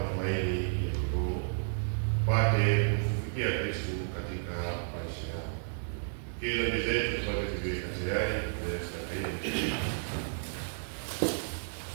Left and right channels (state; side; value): silent; left; digital silence